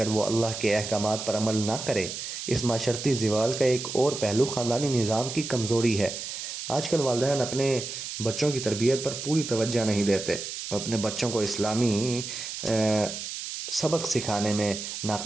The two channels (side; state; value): right; noise; hiss, 7 dB below the sound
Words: وہ اللہ کے احکامات پر عمل نہ کرے۔ اس معاشرتی زوال کا ایک اور پہلو خاندانی نظام کی کمزوری ہے۔ آج کل والدین اپنے بچوں کی تربیت پر پوری توجہ نہیں دیتے اور اپنے بچوں کو اسلامی سبق سکھانے میں